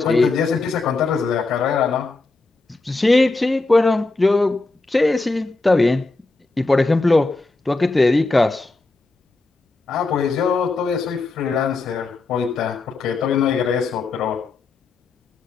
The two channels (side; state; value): right; quieter; 3.5 dB